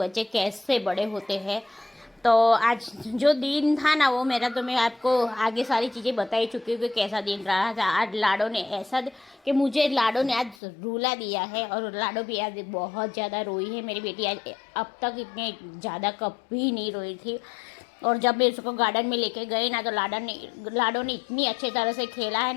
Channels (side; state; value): right; drops out; at 10.6 s